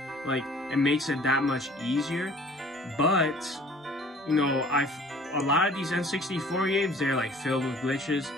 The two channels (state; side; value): normal; both; correlation 0.51